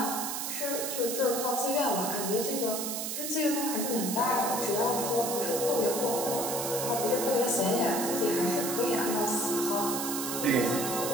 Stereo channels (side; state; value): right; noise; hiss, 3 dB below the sound